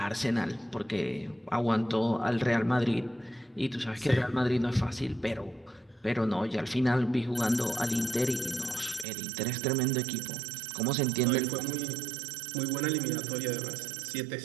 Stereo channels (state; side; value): drops out; left; at 9.1 s